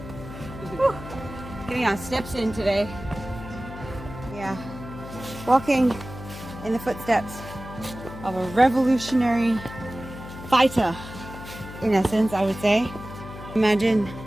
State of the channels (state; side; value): noise; left; hum, 13 dB below the sound